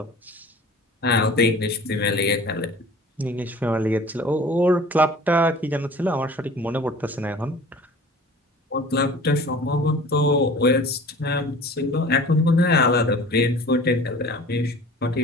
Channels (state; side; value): normal; both; correlation 0.44